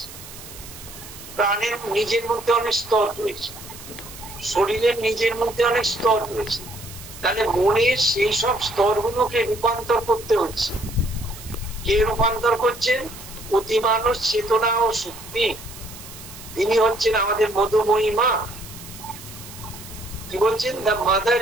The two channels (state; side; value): noise; right; hiss, 15 dB below the sound